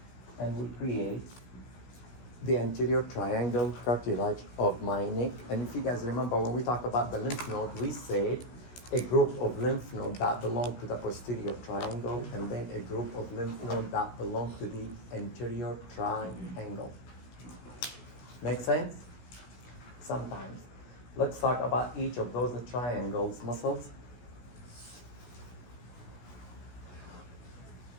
and we create the anterior triangle cartilage of my neck. And if you guys remember, when we talk about the lymph node, we said a group of lymph nodes that belong to the posterior triangle, and then a group of lymph nodes that belong to the anterior triangle. Make sense? Sometimes. Let's talk about each of those triangles muscles.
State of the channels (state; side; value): late; right; 16 ms